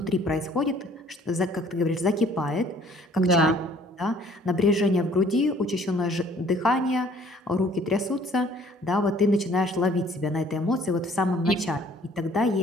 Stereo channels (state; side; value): normal; both; correlation 0.57